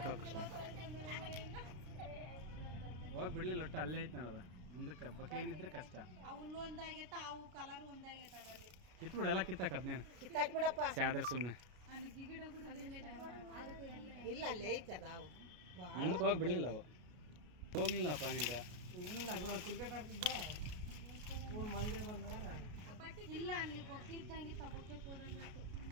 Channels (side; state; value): left; late; 33 ms